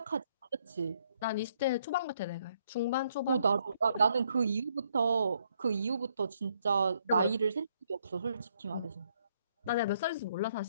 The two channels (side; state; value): both; inverted; correlation -0.71